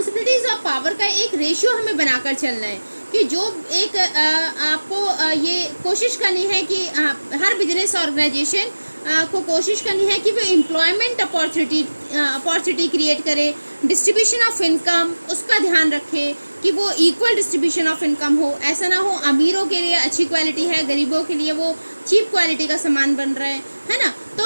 और पावर का एक रेशियो हमें बनाकर चलना है कि जो एक आपको ये कोशिश करनी है कि हर बिजनेस ऑर्गेनाइजेशन को कोशिश करनी है कि वो एम्प्लॉयमेंट अपॉर्चुनिटी क्रिएट करे, डिस्ट्रीब्यूशन ऑफ इनकम उसका ध्यान रखे कि वो इक्वल डिस्ट्रीब्यूशन ऑफ इनकम हो। ऐसा ना हो अमीरों के लिए अच्छी क्वालिटी है, गरीबों के लिए वो चीप क्वालिटी का सामान बन रहा है ना।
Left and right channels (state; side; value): inverted; both; correlation -1.00